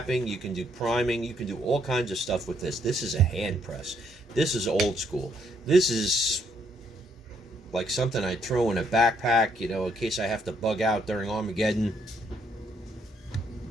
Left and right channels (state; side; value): normal; both; correlation 0.71